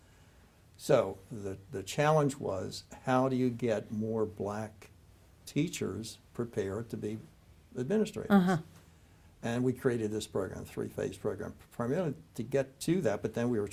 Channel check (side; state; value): both; identical; correlation 1.00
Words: So the challenge was, how do you get more black teachers prepared to be administrators? And we created this program, 3-phase program, primarily to get to that, but then we were